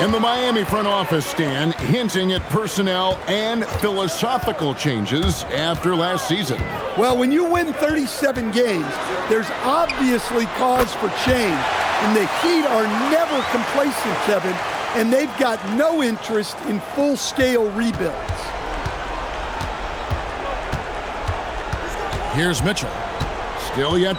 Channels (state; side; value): identical; both; correlation 1.00